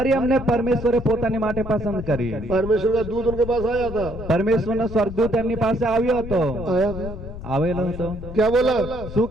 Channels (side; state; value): left; noise; rumble, 10 dB below the sound